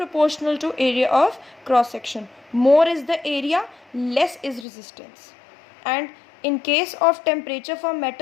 to area of cross section. More is the area, less is resistance. And in case of temperature for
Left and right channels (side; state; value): right; drops out; at 4.7 s